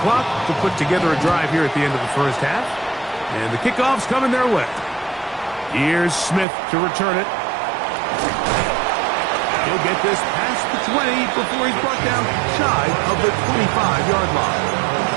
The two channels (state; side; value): drops out; left; at 6.5 s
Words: clock to put together a drive here at the end of the first half. And the kickoff's coming their way. Here's Smith to return it. He'll get this past the 20 before he's brought down shy of the 25-yard line.